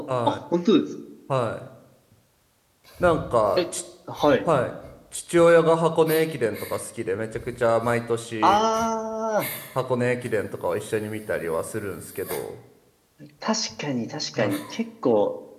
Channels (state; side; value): identical; both; correlation 1.00